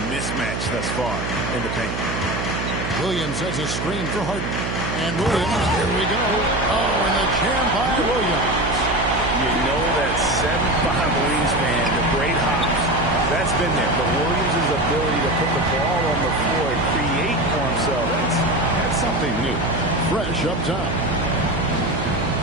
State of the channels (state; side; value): noise; right; hum, 4 dB below the sound